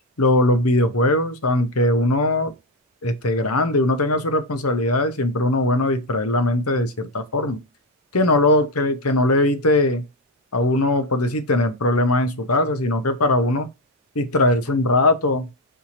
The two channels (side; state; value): both; normal; correlation 0.09